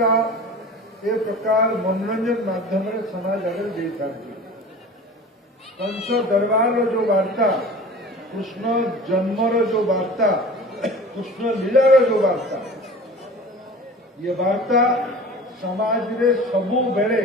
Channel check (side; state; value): both; normal; correlation 0.39